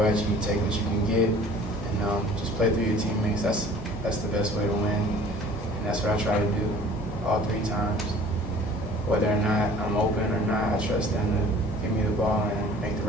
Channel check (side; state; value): both; normal; correlation 0.49